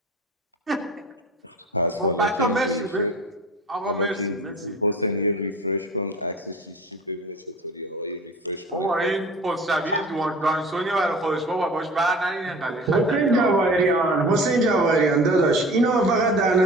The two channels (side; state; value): both; normal; correlation 0.40